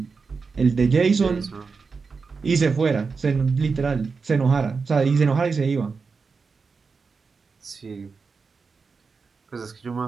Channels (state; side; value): quieter; left; 4.9 dB